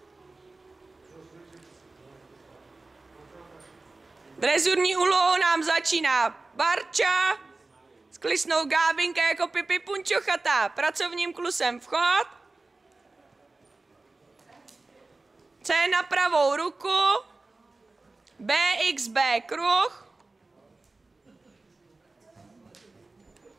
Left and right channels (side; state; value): left; quieter; 3.4 dB